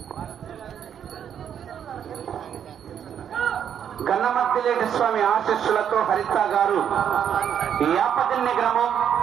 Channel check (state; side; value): quieter; left; 8.8 dB